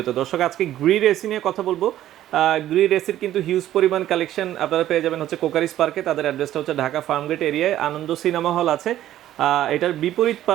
দর্শক, আজকে গ্রি এসি নিয়ে কথা বলবো। গ্রি এসির কিন্তু হিউজ পরিমাণ কালেকশন আপনারা পেয়ে যাবেন হচ্ছে কোকারিস পার্কে। তাদের অ্যাড্রেসটা হচ্ছে ঢাকা ফার্মগেট এরিয়ায়, আনন্দ সিনেমা হল আছে। এটার বিপরীত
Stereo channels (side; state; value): left; quieter; 12.9 dB